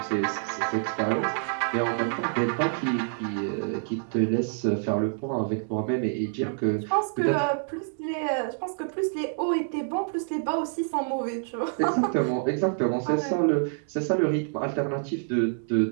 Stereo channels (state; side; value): silent; left; digital silence